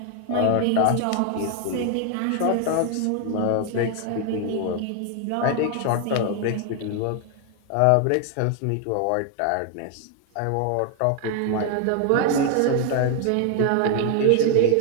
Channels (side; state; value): both; different; correlation 0.00